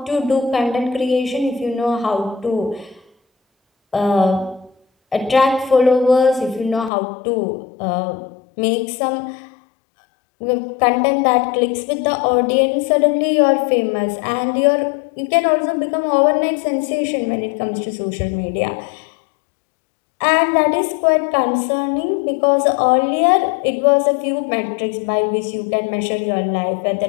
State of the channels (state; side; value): drops out; right; at 6.9 s